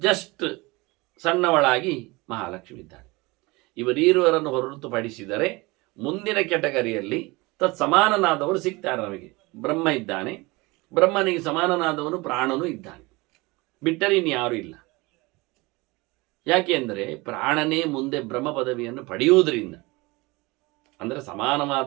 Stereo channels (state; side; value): quieter; left; 23.7 dB